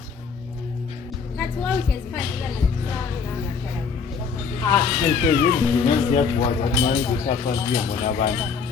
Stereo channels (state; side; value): quieter; right; 5.6 dB